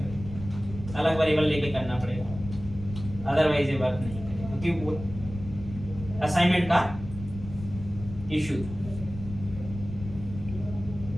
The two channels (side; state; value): left; noise; rumble, 11 dB below the sound